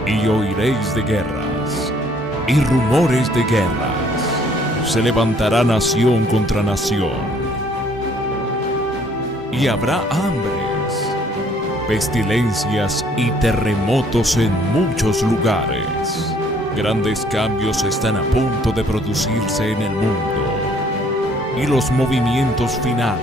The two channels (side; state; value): both; normal; correlation 0.61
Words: Y oiréis de guerras y rumores de guerras. Se levantará nación contra nación. Y habrá hambres, pestilencias y terremotos en muchos lugares. Grandes cambios están a punto de producirse en el mundo. Y los movimientos